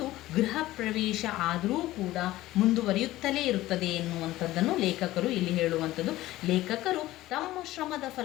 ಗೃಹ ಪ್ರವೇಶ ಆದರೂ ಕೂಡ ಮುಂದುವರಿಯುತ್ತಲೇ ಇರುತ್ತದೆ ಎನ್ನುವಂಥದ್ದನ್ನು ಲೇಖಕರು ಇಲ್ಲಿ ಹೇಳುವಂಥದ್ದು. ಲೇಖಕರು ತಮ್ಮ ಶ್ರಮದ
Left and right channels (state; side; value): quieter; right; 16.4 dB